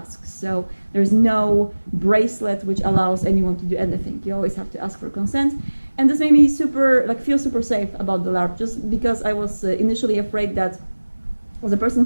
So there's no bracelet which allows anyone to do anything. You always have to ask for consent. And this made me feel super safe about the LARP, just because I was initially afraid that as a person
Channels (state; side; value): inverted; both; correlation -1.00